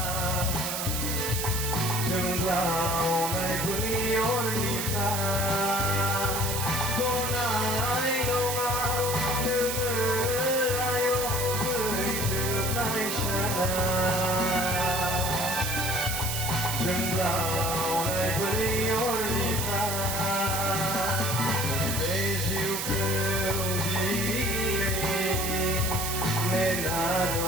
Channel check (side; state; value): right; noise; hiss, 2 dB below the sound